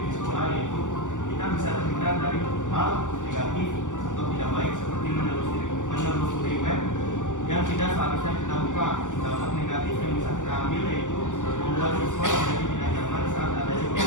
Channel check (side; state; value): right; late; 0.86 ms